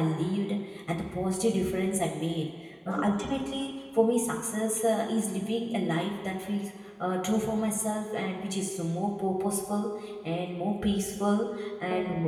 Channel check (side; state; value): both; identical; correlation 1.00